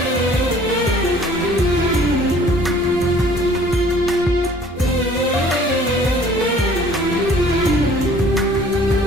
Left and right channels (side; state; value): both; normal; correlation 0.53